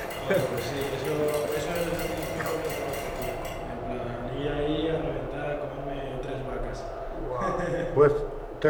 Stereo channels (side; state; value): both; identical; correlation 1.00